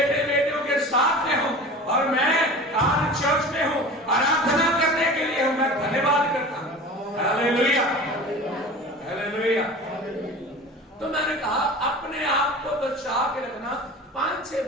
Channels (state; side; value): normal; both; correlation 0.37